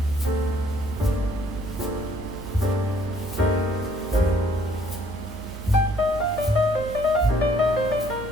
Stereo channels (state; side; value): normal; both; correlation 0.63